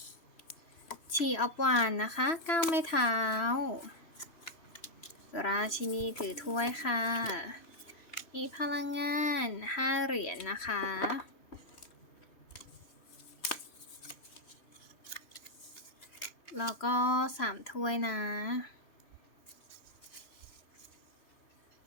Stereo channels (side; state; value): right; late; 3.0 ms